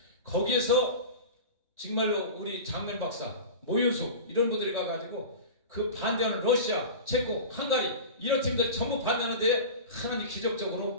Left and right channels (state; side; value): inverted; both; correlation -0.32